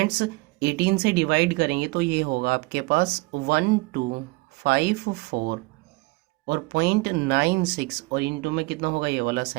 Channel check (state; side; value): quieter; left; 24.3 dB